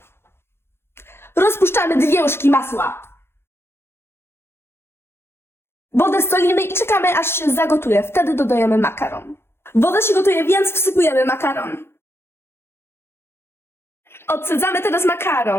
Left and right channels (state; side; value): late; right; 0.12 ms